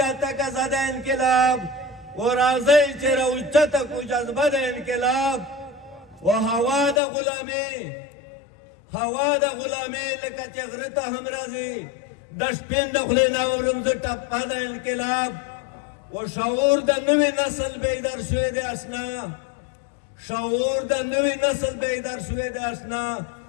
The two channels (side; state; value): right; drops out; at 7.0 s